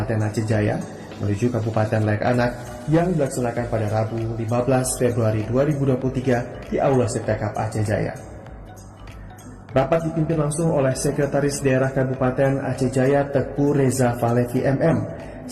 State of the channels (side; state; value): both; identical; correlation 1.00